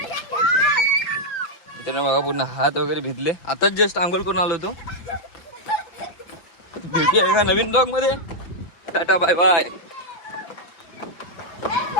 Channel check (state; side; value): late; right; 5.9 ms